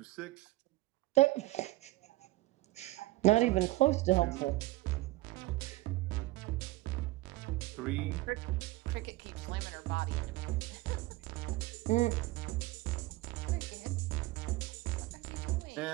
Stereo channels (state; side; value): quieter; left; 19.0 dB